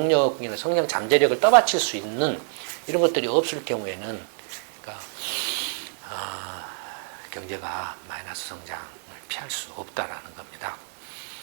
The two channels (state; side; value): silent; left; digital silence